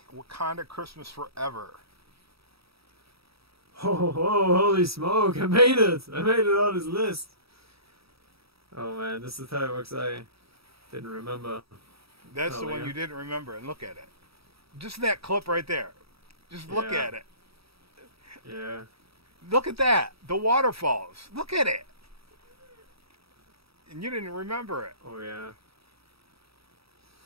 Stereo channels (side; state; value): left; late; 0.77 ms